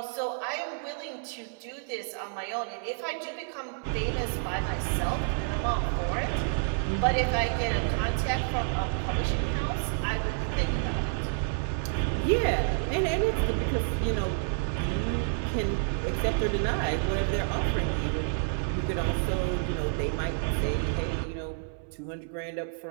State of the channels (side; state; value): left; silent; 58 dB below the other